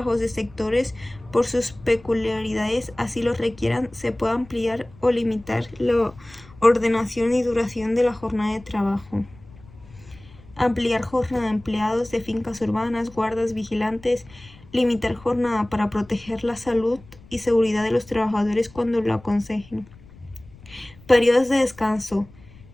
de sectores, por sus peculiaridades, así lo requieran, se puede ampliar o limitar la ordenación y duración de la jornada de trabajo. Ampliar jornada de empleados de fincas urbanas, guardas, vigilantes, limitar jornada para proteger la salud y seguridad de los trabajadores cuando lo aconsejen. Periodos de descanso.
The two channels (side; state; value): left; noise; rumble, 23 dB below the sound